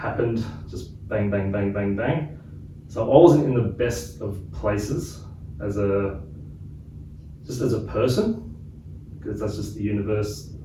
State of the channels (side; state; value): both; identical; correlation 1.00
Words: just bang, bang, bang, bang, bang. So I wasn't in the best of places as a person, because that's just the universe.